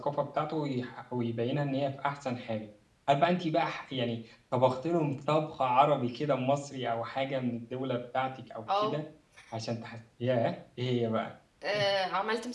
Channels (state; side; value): identical; both; correlation 1.00